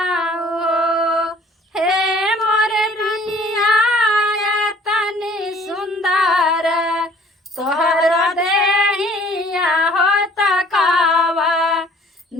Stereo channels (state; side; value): normal; both; correlation 0.55